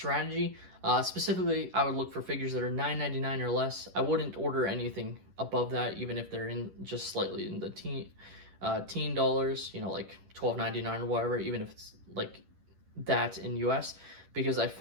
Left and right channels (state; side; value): late; left; 11 ms